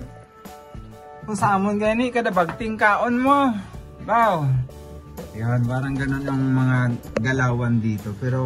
kung sa amon gani, kada bagting kaon mo. Wow. Yan, parang ganun ang mga galawan dito.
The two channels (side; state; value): both; identical; correlation 1.00